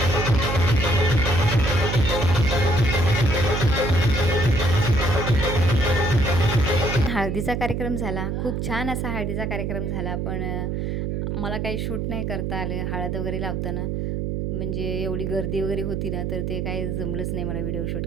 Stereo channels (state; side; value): noise; right; hum, 1 dB below the sound